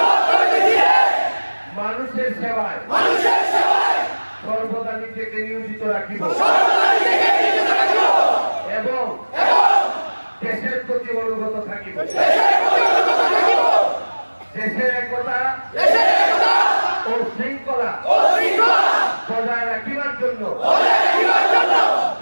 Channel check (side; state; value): both; inverted; correlation -1.00